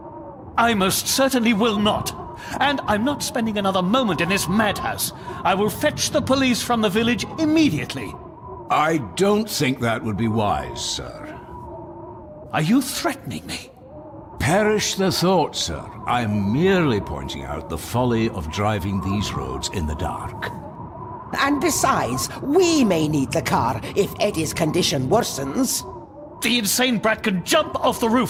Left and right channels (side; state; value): both; identical; correlation 1.00